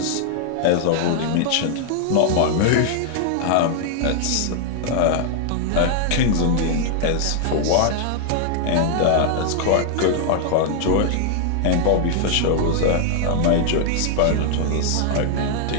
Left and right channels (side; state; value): both; different; correlation 0.00